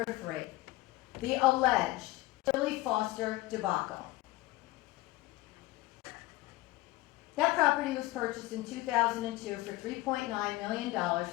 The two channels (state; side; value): quieter; right; 19.2 dB